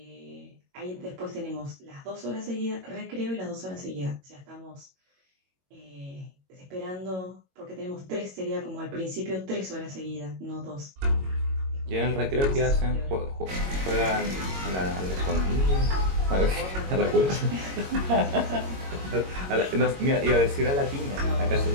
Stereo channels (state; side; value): late; left; 22 ms